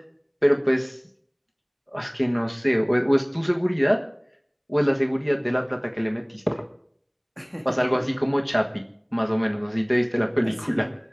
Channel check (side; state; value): both; identical; correlation 1.00